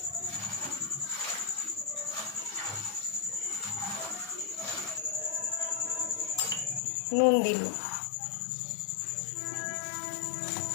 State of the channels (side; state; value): right; drops out; at 6.8 s